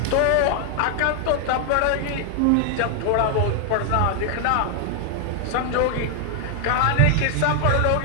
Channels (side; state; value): both; different; correlation 0.00